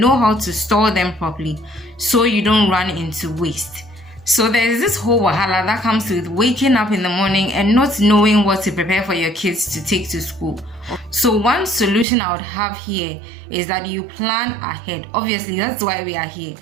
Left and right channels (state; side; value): drops out; left; at 12.1 s